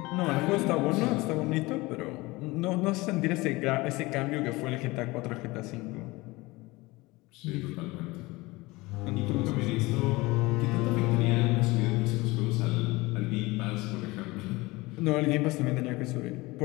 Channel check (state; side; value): quieter; right; 22.0 dB